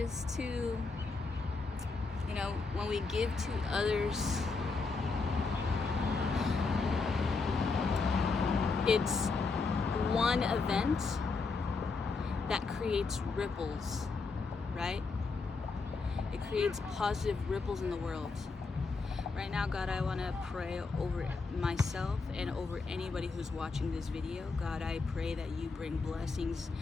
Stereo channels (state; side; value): quieter; right; 4.2 dB